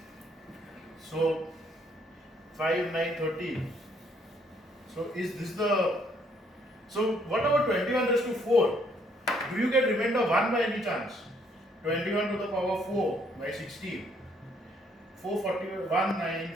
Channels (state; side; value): normal; both; correlation 0.67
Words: So 5 9 13. So is this the, so what about 21 raised to 4? Do you get remainder 1 by any chance? 21 to the power 4 by 16. 441